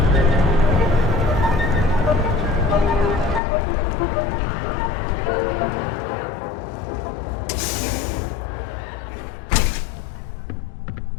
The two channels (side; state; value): right; drops out; at 3.4 s